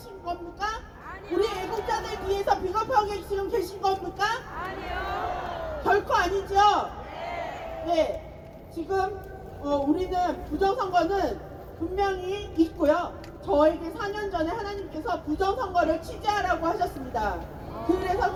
겁니까? 우리 애국자들 뒤에서 비겁하게 지금 계신 겁니까? 아니요. 결코 아니죠? 네. 지금 우리는 부정선거는 분명히 있고요. 저에게 4년 전에 하나님께서 부정선거를 취재하라고 하셨습니다. 그래서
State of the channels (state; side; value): identical; both; correlation 1.00